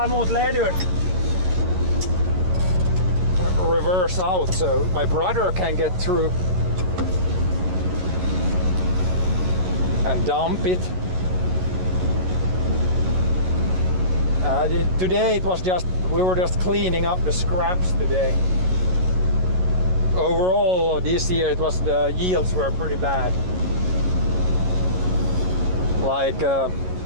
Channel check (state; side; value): late; left; 11 ms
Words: emot ledut. Reverse out so my brother can get through. And dump it. Today we were just cleaning up the scraps today. Overall this year the yields were pretty bad. Like